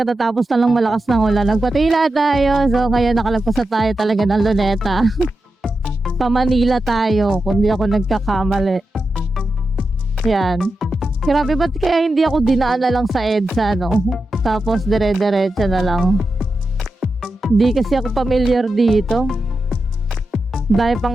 na lang malakas ng ulan. Nagpatila tayo. So, ngayon nakalagpas na tayo talaga ng Luneta. Pa-Manila tayo, kung di ako nagkakamali. Yan. Grabe, ba't kaya hindi ako dinaan na lang sa EDSA, no? Tapos dire-diretso na lang. Di kasi ako familiar dito. Dahil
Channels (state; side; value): normal; both; correlation 0.90